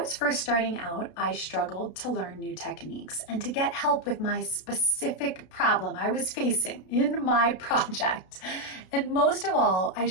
first starting out, I struggled to learn new techniques and to get help with my specific problem I was facing in my project. And most of all, I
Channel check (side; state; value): right; late; 32 ms